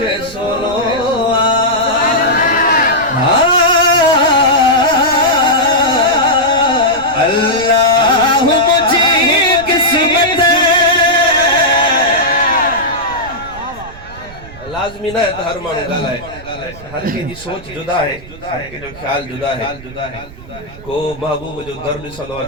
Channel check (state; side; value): noise; right; rumble, 18 dB below the sound